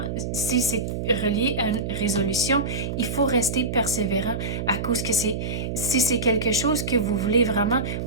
si c'est relié à une résolution, il faut rester persévérant à cause que si c'est quelque chose que vous voulez vraiment,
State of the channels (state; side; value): noise; right; hum, 4 dB below the sound